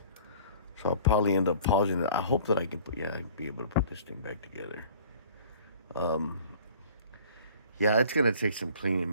So I'll probably end up pausing it. I hope that I can be able to put this thing back together. Yeah, it's gonna take some cleaning,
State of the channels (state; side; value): inverted; both; correlation -0.48